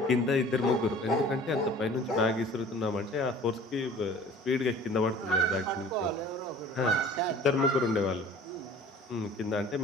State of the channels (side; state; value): both; normal; correlation 0.47